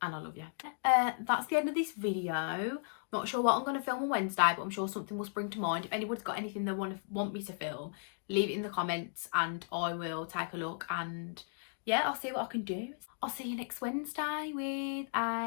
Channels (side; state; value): right; silent; digital silence